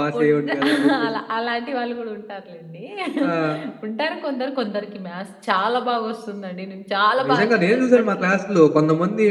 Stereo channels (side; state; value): both; identical; correlation 1.00